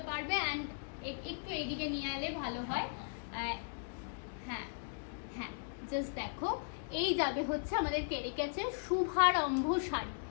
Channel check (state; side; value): silent; right; digital silence